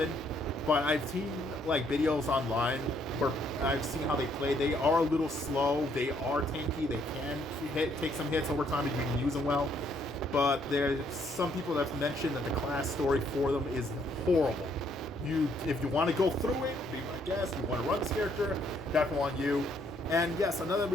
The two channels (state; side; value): normal; both; correlation 0.69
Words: But I've seen like videos online where I've seen how they play. They are a little slow. They are tanky. They can take some hits over time if you can use them well. But there's some people that have mentioned that the class story for them is horrible. If you want to go through it, be my guest. You want to run this character, definitely on you. And yes, another